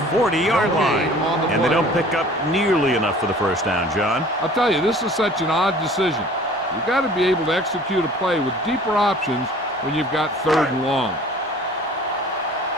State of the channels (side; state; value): both; normal; correlation 0.48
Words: 40-yard line. And they don't pick up nearly enough for the first down, John. I'll tell you, this is such an odd decision. You've got to be able to execute a play with deeper options when you've got third and long.